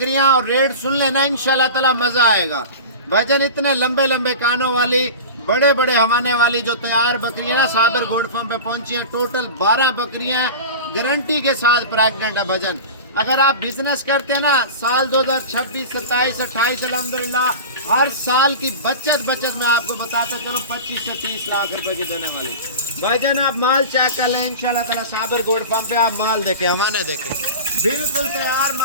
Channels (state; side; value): inverted; both; correlation -0.32